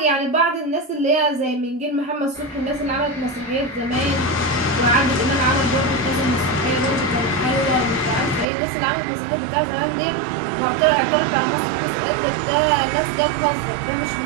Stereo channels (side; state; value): left; drops out; at 8.5 s